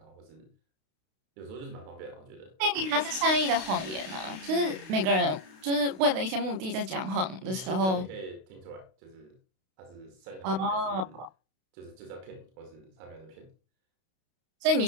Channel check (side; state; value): left; late; 32 ms